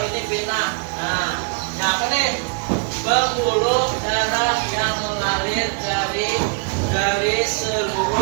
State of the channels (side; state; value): left; quieter; 39.0 dB